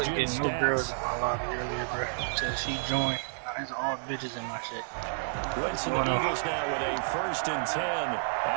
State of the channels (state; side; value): silent; left; digital silence